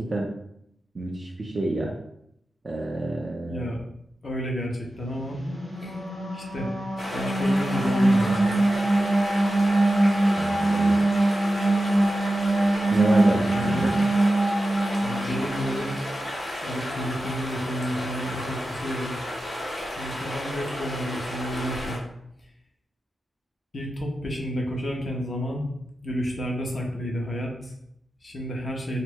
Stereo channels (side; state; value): both; normal; correlation 0.92